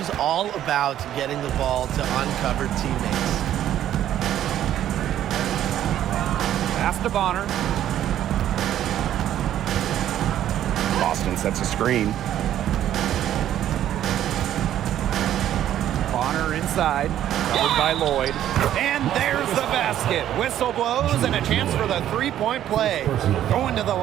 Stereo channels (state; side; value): quieter; left; 11.6 dB